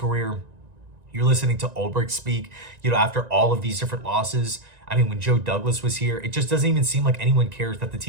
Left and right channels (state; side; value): late; left; 1.9 ms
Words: You're listening to Ulbrich speak, after all of these different losses. I mean, when Joe Douglas was here, it just doesn't even seem like anyone cares that the